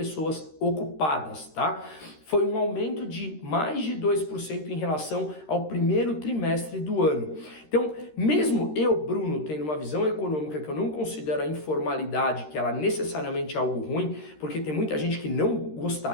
ocupadas, tá? Foi um aumento de mais de 2% em relação ao primeiro trimestre do ano. Então, mesmo eu, Bruno, tendo uma visão econômica que eu não considero a informalidade, que ela necessariamente é algo ruim, porque tem muita gente que não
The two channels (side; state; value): right; late; 13 ms